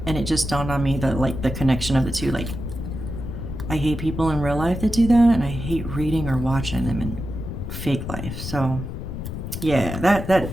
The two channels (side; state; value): left; noise; rumble, 6 dB below the sound